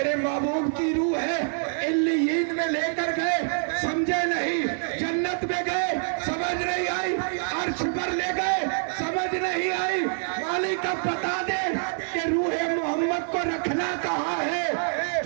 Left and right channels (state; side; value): silent; left; 61 dB below the other